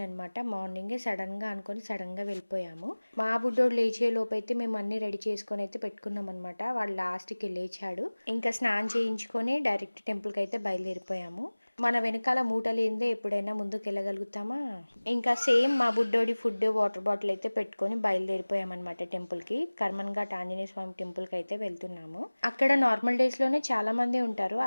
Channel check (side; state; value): both; inverted; correlation -1.00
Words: అనమాట. మార్నింగే సడన్‌గా అనుకోని సడన్‌గా వెళ్ళిపోయాము. మా బుడ్డోడు లేచే లోపైతే మేము అన్నీ రెడీ చేసుకొని అయితే పెట్టుకున్నామనమాట. వాడు లాస్ట్‌కి లేచాడు. ఇంకా స్నానం చేయించుకొని డైరెక్ట్ టెంపుల్‌కైతే బయలుదేరిపోయాము. మన వెనకాల మూట లేనిదే ఎప్పుడైనా ముందుకెళ్ళగలుగుతామా? ఇంకా సేమ్ మా బుడ్డోడి ఫుడ్, వాటర్ బాటిల్ అయితే పెట్టుకొని బయలుదేరిపోయామన్నమాట టెంపుల్‌కి. కర్మన్ ఘాట్ ఆంజనేయ స్వామి టెంపుల్‌కి అయితే వెళ్తున్నాము. అక్కడ నార్మల్ డేస్‌లోనే చాలా మంది ఉంటారు.